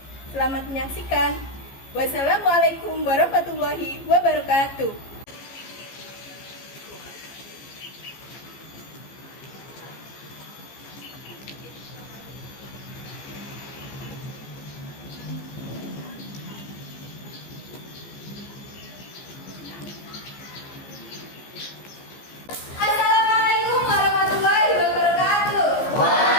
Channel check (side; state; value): right; late; 15 ms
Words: Selamat menyaksikan. Wassalamualaikum warahmatullahi wabarakatuh.